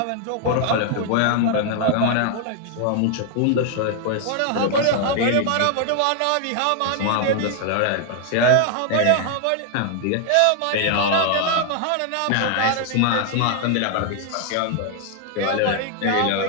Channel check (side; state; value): both; different; correlation 0.00